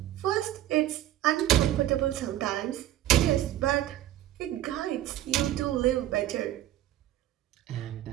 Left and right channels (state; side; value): quieter; left; 13.4 dB